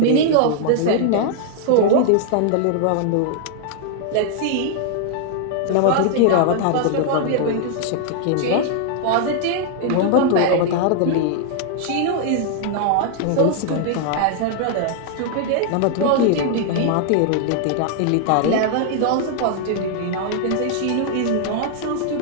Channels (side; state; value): both; different; correlation 0.00